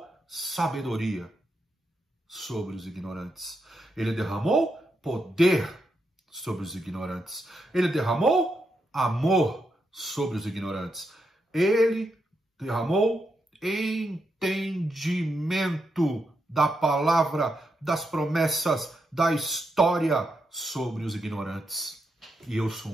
sabedoria sobre os ignorantes. Ele derramou poder sobre os ignorantes. Ele derramou amor sobre os ignorantes. Ele derramou entendimento da palavra, das promessas, da história sobre os ignorantes. E eu sou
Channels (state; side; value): normal; both; correlation 0.83